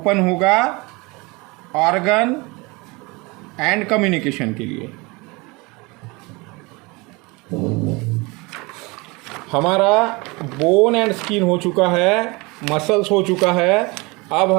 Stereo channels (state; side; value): quieter; left; 25.8 dB